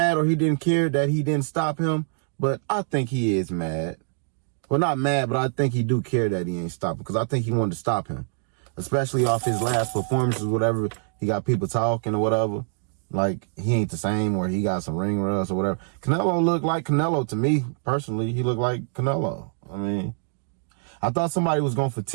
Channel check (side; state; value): left; silent; digital silence